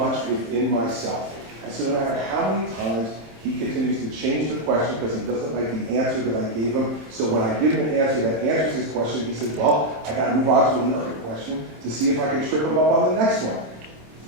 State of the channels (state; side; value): late; left; 27 ms